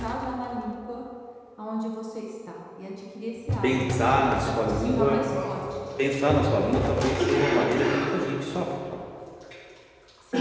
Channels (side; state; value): both; identical; correlation 1.00